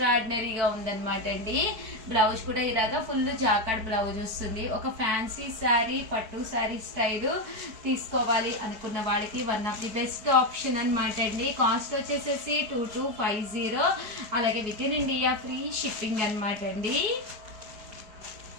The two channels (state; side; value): late; left; 4.7 ms